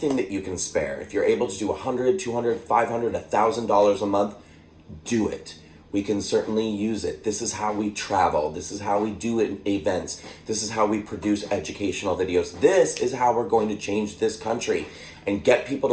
that you can spare. If you're able to do $100, $200, $500, $1,000 a month, do it. We can certainly use it. This is how we travel. This is how we do events. This is how we produce educational videos. This is how we're going to change this country and get people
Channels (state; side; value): identical; both; correlation 1.00